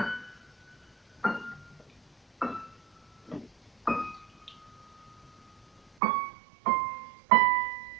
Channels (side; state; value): left; drops out; at 5.8 s